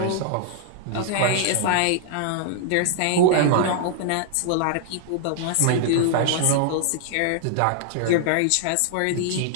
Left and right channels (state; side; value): different; both; correlation -0.01